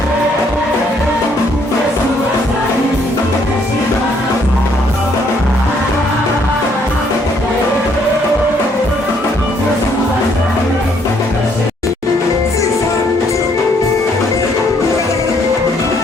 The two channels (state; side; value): normal; both; correlation 0.68